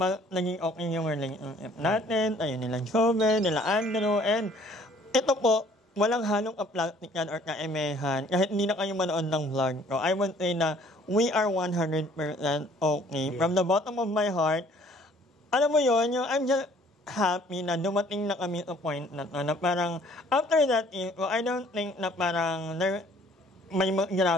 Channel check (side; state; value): both; normal; correlation 0.57